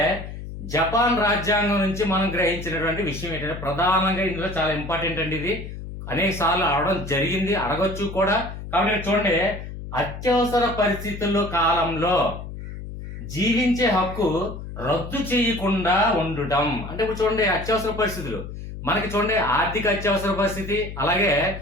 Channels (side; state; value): left; noise; hum, 10 dB below the sound